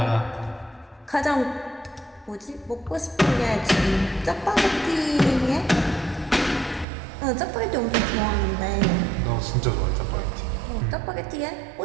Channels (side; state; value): left; drops out; at 6.9 s